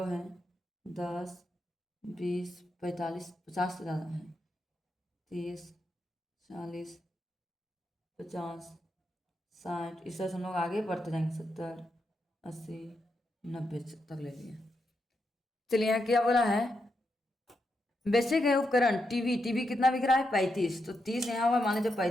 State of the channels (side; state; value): both; normal; correlation 0.84